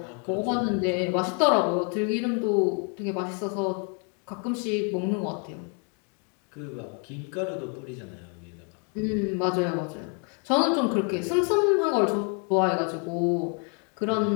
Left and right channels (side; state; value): right; quieter; 38.8 dB